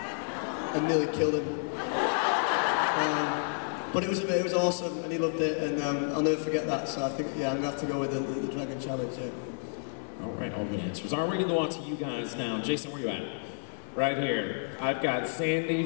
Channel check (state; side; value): silent; right; 58 dB below the other